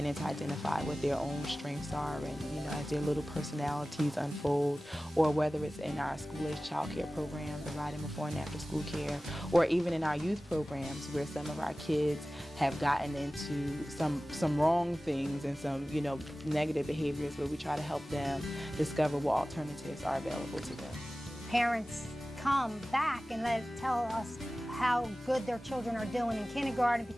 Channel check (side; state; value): both; normal; correlation 0.97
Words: to identify what their own strengths are and, you know, as their little personalities unfold, or whether it's in our school-age child care program, providing before and after school care, or even in our youth programs where some of our kids have gotten into some wrong things and some, you know, negative behaviors, where we try to help them discover what alternatives are available to them. Parents come back and tell us how good their children are doing in kindergarten